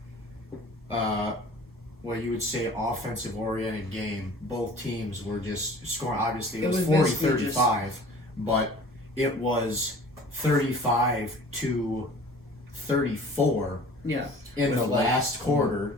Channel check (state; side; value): normal; both; correlation 0.46